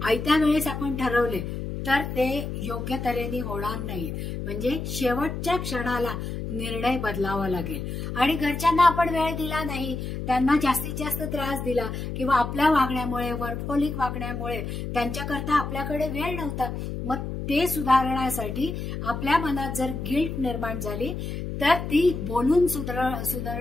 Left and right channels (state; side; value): noise; left; hum, 5 dB below the sound